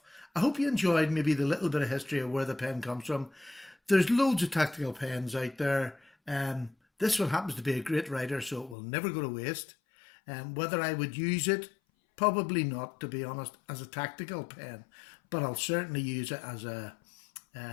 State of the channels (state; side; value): drops out; right; at 8.8 s